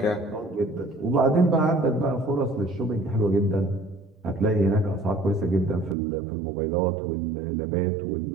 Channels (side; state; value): left; drops out; at 6.0 s